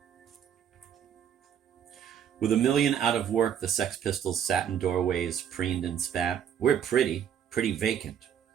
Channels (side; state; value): left; quieter; 8.9 dB